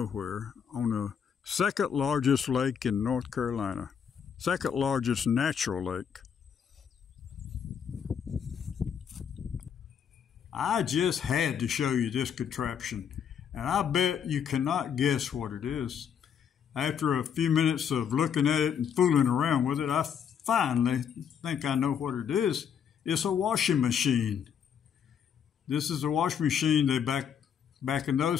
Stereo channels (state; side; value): quieter; right; 7.9 dB